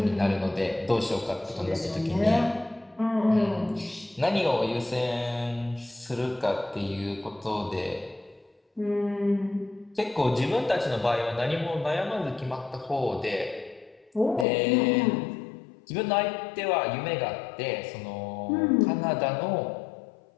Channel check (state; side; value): drops out; right; at 14.5 s